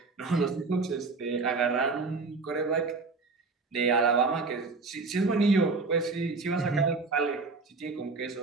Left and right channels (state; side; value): quieter; left; 4.0 dB